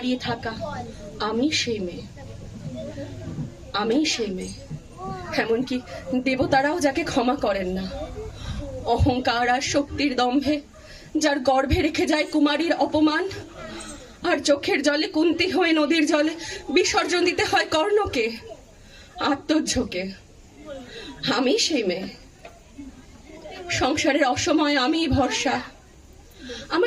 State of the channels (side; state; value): both; identical; correlation 1.00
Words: থাকা, আমি সেই মেয়ে। আমি সেই মেয়ে, এমনকি দেবতারাও যাকে ক্ষমা করেন না। অহংকার আর শক্তির দম্ভে যার গর্ভে রেখে যায় কুমারীর অপমান, আর চোখের জলে কুন্তি হয়ে নদীর জলে বিসর্জন দিতে হয় কর্ণকে আত্মঝোঁকে, আমি সেই মেয়ে। সংসারের অসময়ে আমি ভরসা,